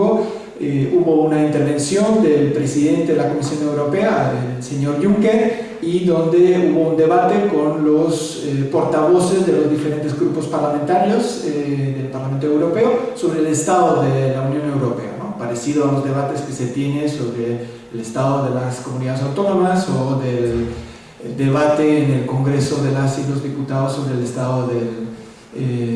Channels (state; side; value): identical; both; correlation 1.00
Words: hubo una intervención del presidente de la Comisión Europea, el señor Juncker, y donde hubo un debate con los portavoces de los diferentes grupos parlamentarios del Parlamento Europeo sobre el estado de la Unión Europea, ¿no?, parecido a los debates que se tiene sobre el estado de las comunidades autónomas o del debate en el Congreso de las y los diputados sobre el estado